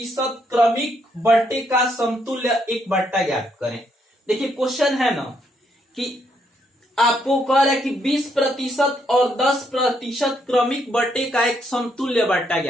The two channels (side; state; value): both; normal; correlation 0.74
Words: क्रमिक बट्टे का समतुल्य एक बट्टा ज्ञात करें। देखिए क्वेश्चन है ना कि आपको कह रहा है कि 20% और 10% क्रमिक बट्टे का एक समतुल्य बट्टा